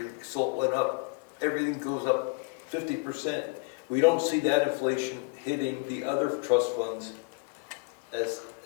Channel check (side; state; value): right; quieter; 30.9 dB